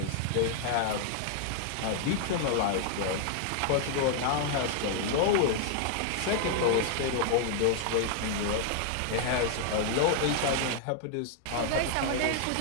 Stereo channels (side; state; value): both; different; correlation 0.00